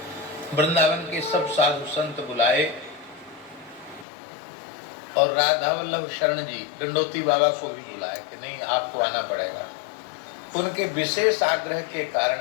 वृंदावन के सब साधु संत बुलाए और राधा वल्लभ शरण जी दंडोती बाबा को भी बुलाया कि नहीं, आपको आना पड़ेगा। उनके विशेष आग्रह के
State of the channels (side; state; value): right; drops out; at 4.0 s